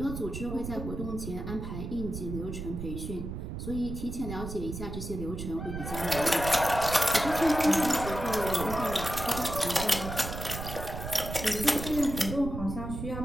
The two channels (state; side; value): noise; right; rumble, 6 dB below the sound